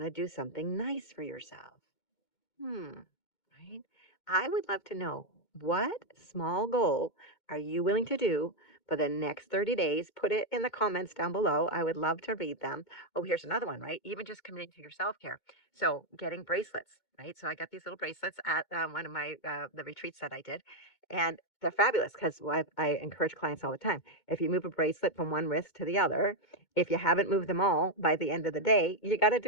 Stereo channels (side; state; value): right; late; 2.2 ms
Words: to do something nice for yourself. Right? I would love to know, what small goal are you willing to do for the next 30 days? Put it in the comments down below. I would love to read them. Oh, here's another one, right? Even just committing to your self care. So, getting bracelets, right? So, I got these little bracelets at one of my the retreats that I did. And they're fabulous because I encourage clients all the time. If you move a bracelet from one wrist to the other, if you haven't moved them all by the end of the day, you got to